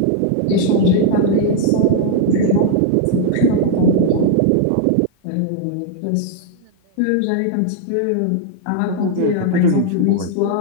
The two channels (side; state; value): both; different; correlation 0.00